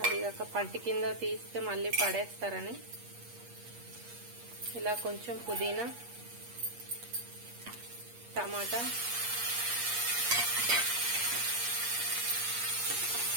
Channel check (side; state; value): left; late; 8.4 ms